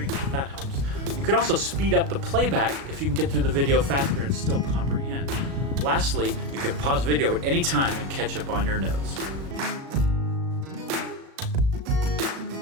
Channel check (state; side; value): late; left; 36 ms